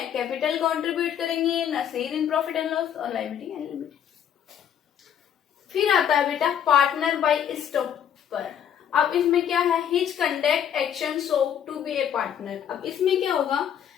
कैपिटल कंट्रीब्यूट करेंगे, ना share in profit and loss और लायबिलिटी एंड लिमिट। फिर आता है बेटा पार्टनर बाय स्टॉपर। अब इसमें क्या है, his conduct action show to be a partner. अब इसमें क्या होगा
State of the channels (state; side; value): quieter; right; 9.1 dB